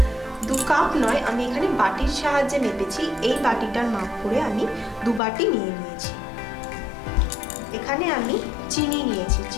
2 কাপ নয়, আমি এখানে বাটির সাহায্যে মেপেছি। এই বাটিটার মাপ করে আমি 2 বাটি নিয়ে নিয়েছি। এখানে আমি চিনি নিয়েছি,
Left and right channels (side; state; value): right; drops out; at 5.2 s